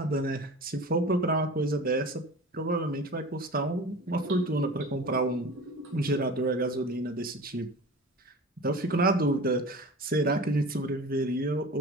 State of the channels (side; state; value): both; normal; correlation 0.36